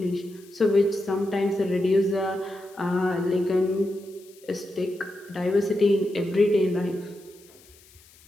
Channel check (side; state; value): left; noise; hiss, 26 dB below the sound